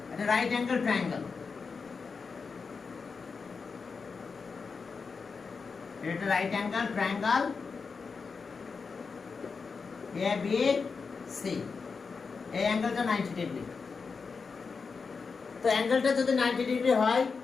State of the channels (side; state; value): right; quieter; 5.0 dB